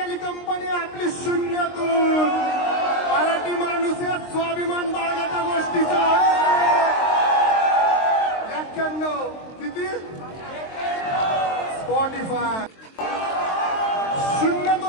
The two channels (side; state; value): right; late; 23 ms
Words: कंपनी आपली शून्यातून. मराठी माणूस या स्वाभिमान बाळगाच्या गोष्टीचा 91 किती स्पॉटिफाय.